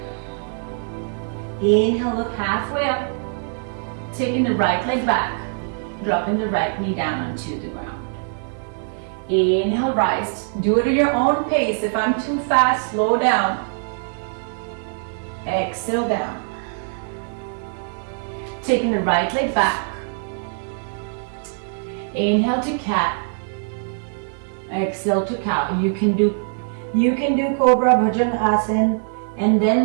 Inhale, look halfway up. Taking the right leg back. Dropping the right knee down onto the ground. Inhale, rise. Do it at your own pace. If I'm too fast, slow down. Exhale, down. Taking the right leg back. Inhale to cat. Exhale to cow. You can do Cobra Bhujangasana, and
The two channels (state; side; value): silent; left; 57 dB below the other